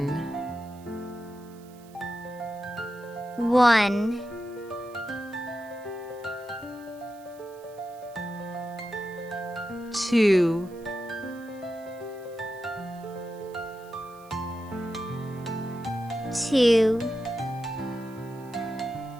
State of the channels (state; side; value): noise; right; hiss, 26 dB below the sound